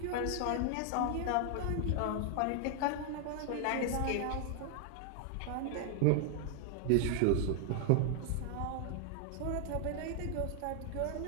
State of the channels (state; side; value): different; both; correlation 0.00